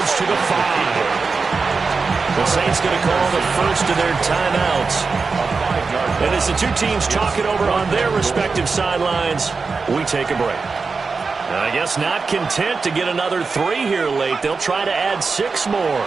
to the 5. The Saints going to call the first of their timeouts. And as the two teams talking over on their respective sidelines, we take a break. I guess not content to get another 3 here late. They'll try to add 6 more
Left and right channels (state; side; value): quieter; left; 4.6 dB